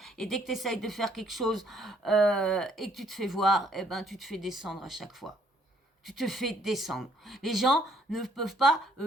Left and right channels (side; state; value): both; normal; correlation 0.64